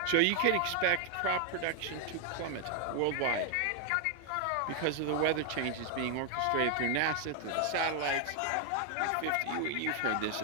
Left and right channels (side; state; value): both; different; correlation 0.00